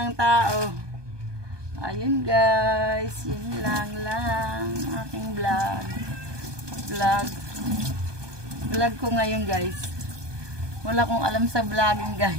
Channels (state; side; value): late; left; 1.2 ms